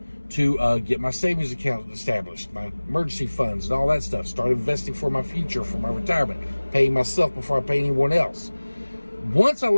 to get my savings account established, my emergency funds and all that stuff. Start investing for my future, for my retirement, paying myself before I pay anyone else. Once I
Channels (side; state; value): both; inverted; correlation -1.00